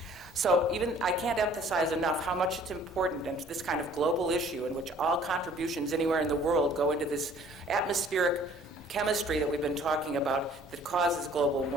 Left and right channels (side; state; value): both; normal; correlation 0.54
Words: So even I can't emphasize enough how much it's important into this kind of global issue in which all contributions anywhere in the world go into this atmospheric chemistry that we've been talking about that causes global